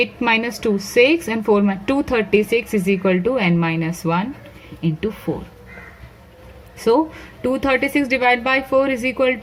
minus 2, 6, and 4 236 is equal to n minus 1 into 4. So 236 divided by 4 is equal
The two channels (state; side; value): identical; both; correlation 1.00